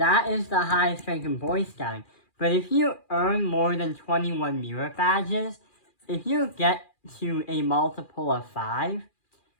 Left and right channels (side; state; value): right; late; 2.4 ms